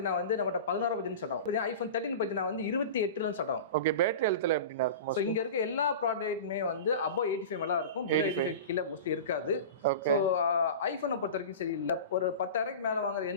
வந்து நம்மகிட்ட 16 பட்ஜெட் ஸ்டார்ட் ஆகும். ஐஃபோன் 13 பார்த்தீங்கன்னா வந்து 28 ஸ்டார்ட் ஆகும். ஓகே, பேட்டரி ஹெல்த்ல எப்படின்னா இருக்கும்? ஸோ இங்க இருக்க எல்லா ப்ராடக்ட்டுமே வந்து above 85 மேல இருக்கும், 85 கீழே மோஸ்ட்லி இருக்காது. ஸோ ஐஃபோனை பொறுத்த வரைக்கும் சரி இல்லை, ஒரு 10,000 மேல வாங்குற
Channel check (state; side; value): inverted; both; correlation -0.31